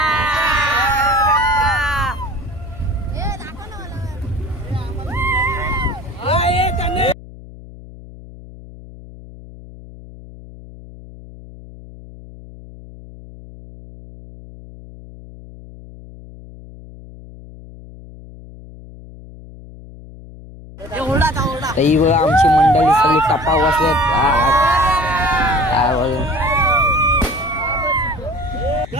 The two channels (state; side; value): noise; left; hum, 18 dB below the sound